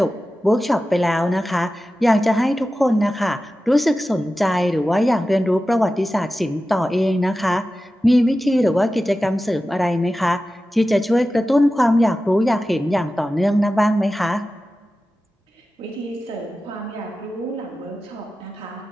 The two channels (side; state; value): both; normal; correlation 0.94